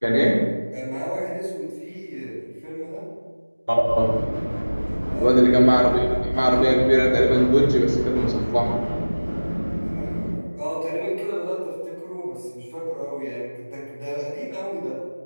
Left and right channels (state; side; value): inverted; both; correlation -1.00